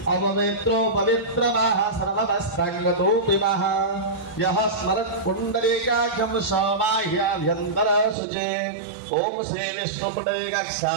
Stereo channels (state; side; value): drops out; left; at 8.2 s